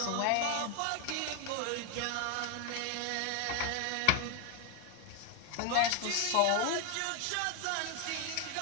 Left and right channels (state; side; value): different; both; correlation 0.01